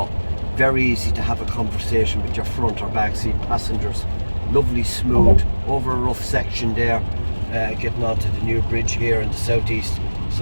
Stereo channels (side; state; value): both; inverted; correlation -1.00